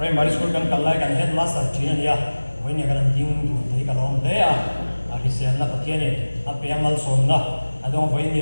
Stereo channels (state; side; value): inverted; both; correlation -1.00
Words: school kan kallai kan headmaster thina ania hoi ne kan ding du te ka lom te a hisian na Pathian ni apeamal som na adong hoi ni